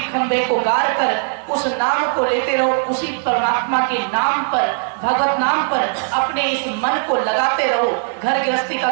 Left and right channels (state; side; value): silent; left; 61 dB below the other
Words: खंभे को गाड़ कर उस नाम को लेते रहो, उसी परमात्मा के नाम पर, भगवत नाम पर अपने इस मन को लगाते रहो, घर गृहस्थी